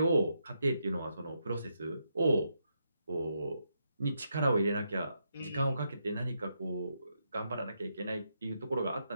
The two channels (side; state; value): both; inverted; correlation -0.81